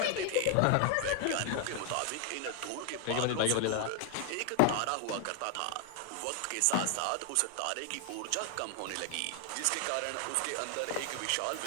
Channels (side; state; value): both; different; correlation 0.00